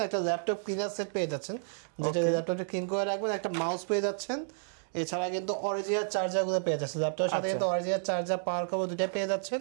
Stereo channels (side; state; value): left; silent; digital silence